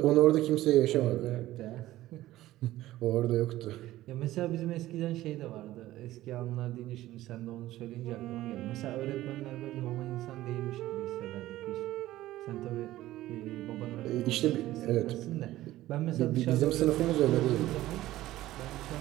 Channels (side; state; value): left; quieter; 15.5 dB